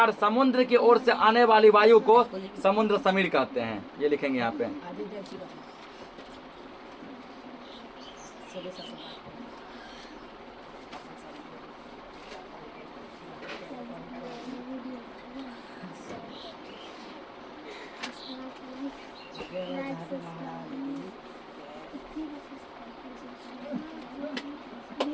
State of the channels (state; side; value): identical; both; correlation 1.00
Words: समुद्र की ओर से आने वाली वायु को समुद्र समीर कहते हैं। ये लिखेंगे यहाँ पे।